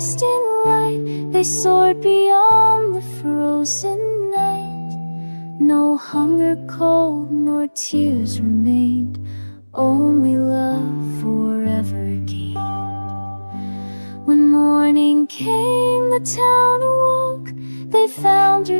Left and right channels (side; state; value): both; inverted; correlation -1.00